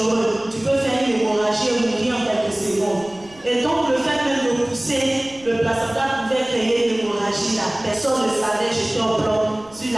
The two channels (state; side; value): noise; right; rumble, 25 dB below the sound